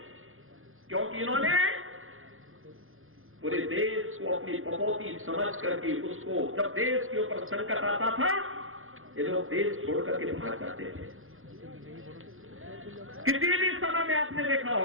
क्योंकि इन्होंने पूरे देश को अपनी बपौती समझ करके उसको जब देश के ऊपर संकट आता था ये लोग देश छोड़ करके भाग जाते थे। किसी भी समय में आपने देखा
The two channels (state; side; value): late; left; 0.60 ms